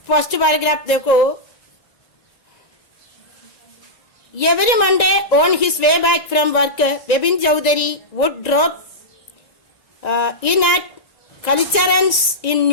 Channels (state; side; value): late; right; 1.9 ms